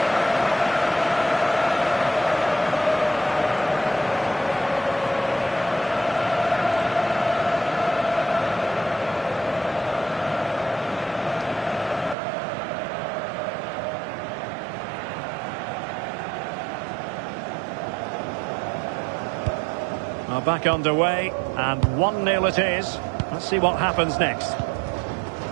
Back underway, and 1-0 it is. Let's see what happens next.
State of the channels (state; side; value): drops out; left; at 12.2 s